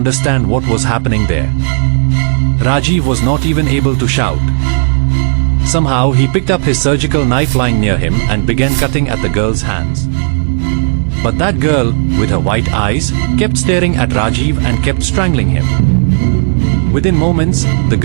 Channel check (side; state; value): left; silent; 68 dB below the other